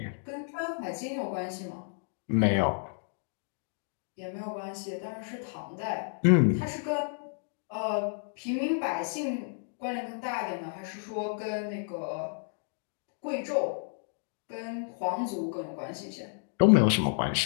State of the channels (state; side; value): silent; right; digital silence